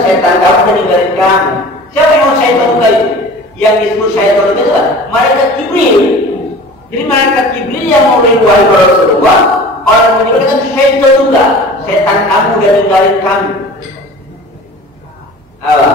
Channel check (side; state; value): both; normal; correlation 0.41